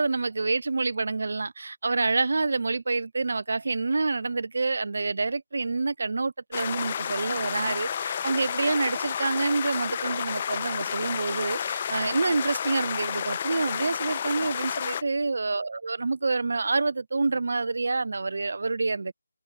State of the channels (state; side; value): inverted; both; correlation -0.91